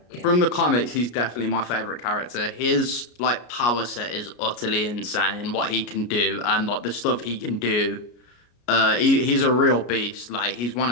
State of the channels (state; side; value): late; right; 33 ms